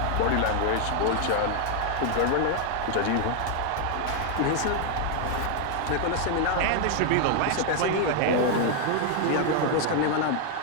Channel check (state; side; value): different; both; correlation 0.00